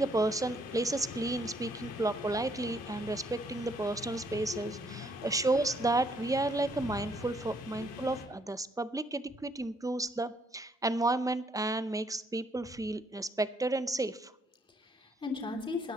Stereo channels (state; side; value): normal; both; correlation 0.69